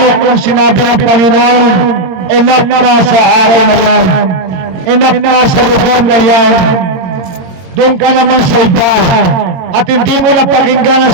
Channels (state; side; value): late; left; 22 ms